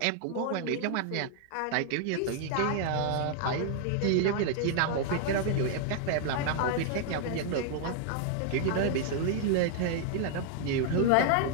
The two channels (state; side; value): different; both; correlation 0.00